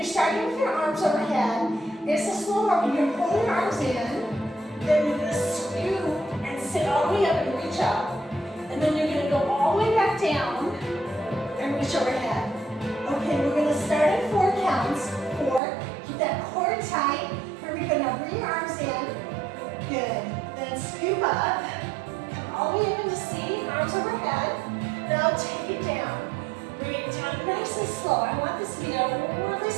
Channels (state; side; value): drops out; left; at 15.6 s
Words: starting with your arms overhead. It's a slow movement. You're pulling your arms in, then you're going to scoop and sit all the way up and reach up. And then you're going to go all the way back down and reach overhead. Okay, we're going to start at 4 counts. 4. Keep that core tight. Here we go. Now bring your arms in. Good. Then scoop up. Come all the way up into seating, arms overhead. Now take it down. Bring it down nice and slow. I want this to be a really